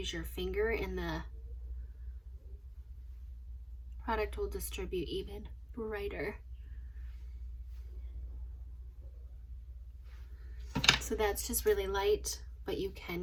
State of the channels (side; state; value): both; identical; correlation 1.00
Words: your finger, and the product will distribute even brighter. So that's just really light, but you